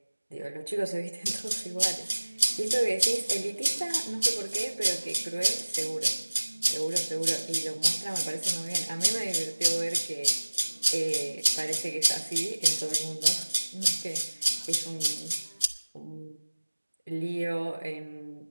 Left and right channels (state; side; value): inverted; both; correlation -1.00